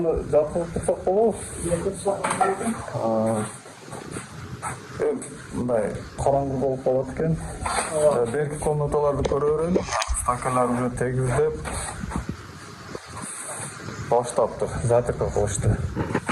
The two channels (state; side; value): identical; both; correlation 1.00